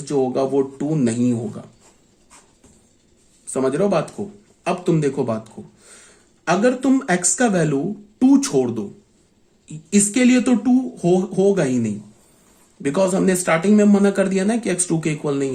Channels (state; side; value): identical; both; correlation 1.00